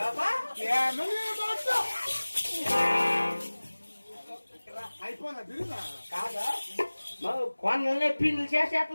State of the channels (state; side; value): inverted; both; correlation -1.00